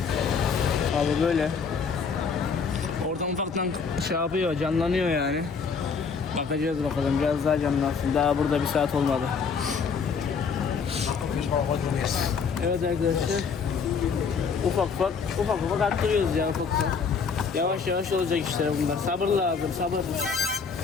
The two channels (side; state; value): right; quieter; 5.7 dB